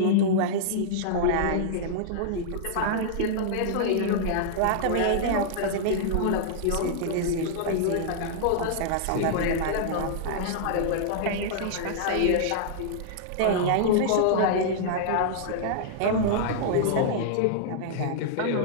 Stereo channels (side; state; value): both; different; correlation -0.01